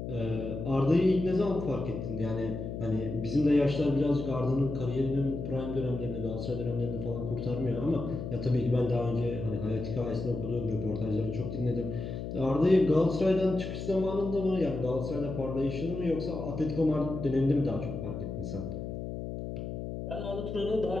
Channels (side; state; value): left; noise; hum, 6 dB below the sound